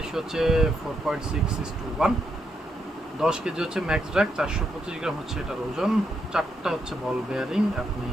হচ্ছে 4.6:1। 10 কেজি হচ্ছে ম্যাক্স ড্রাগ, 425 গ্রাম হচ্ছে এটার ওজন। 4টা হচ্ছে বল বেয়ারিং। আপনি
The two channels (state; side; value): normal; both; correlation 0.80